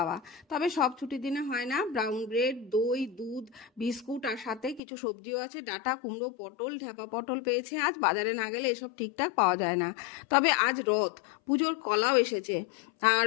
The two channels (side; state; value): right; drops out; at 4.8 s